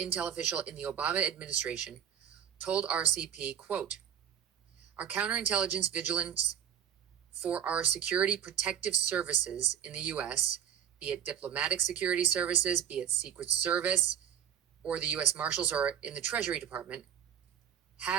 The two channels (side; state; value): left; quieter; 9.2 dB